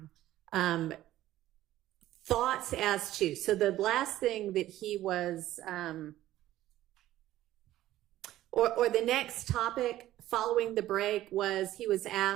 thoughts as to, so the last thing that he was, or the next topic following the break was he was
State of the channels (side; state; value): left; quieter; 14.3 dB